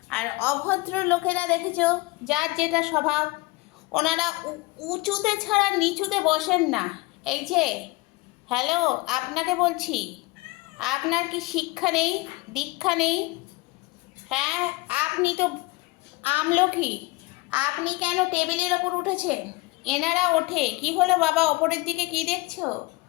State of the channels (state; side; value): quieter; right; 22.7 dB